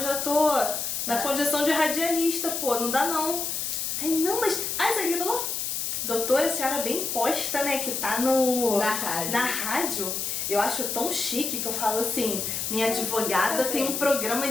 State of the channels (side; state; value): left; noise; hiss, 2 dB below the sound